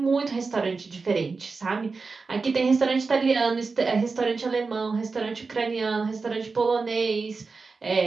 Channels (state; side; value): quieter; left; 4.3 dB